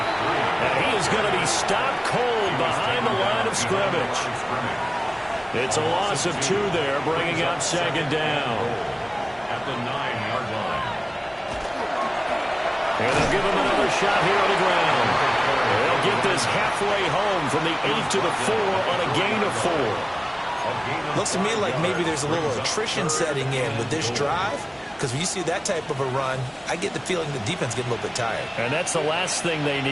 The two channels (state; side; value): identical; both; correlation 1.00